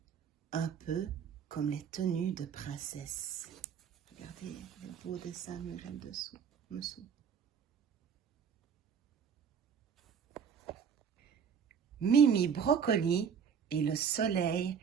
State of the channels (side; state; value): left; quieter; 7.2 dB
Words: un peu comme les tenues de princesse. Regardez le beau dessin mural dessous. Mimi Broccoli et le soleil